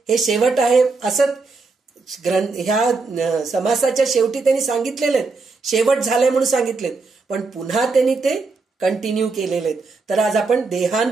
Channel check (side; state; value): left; quieter; 4.1 dB